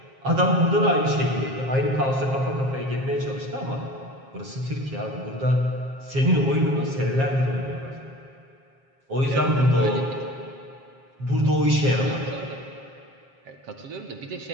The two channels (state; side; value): late; left; 7.4 ms